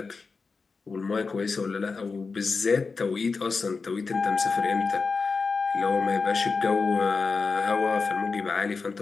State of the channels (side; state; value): right; quieter; 4.5 dB